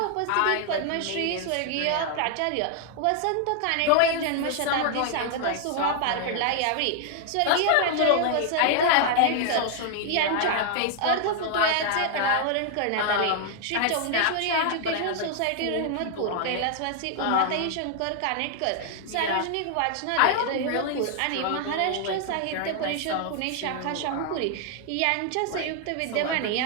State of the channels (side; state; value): both; different; correlation 0.00